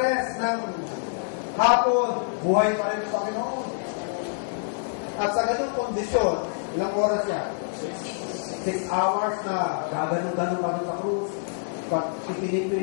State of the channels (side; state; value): right; silent; 61 dB below the other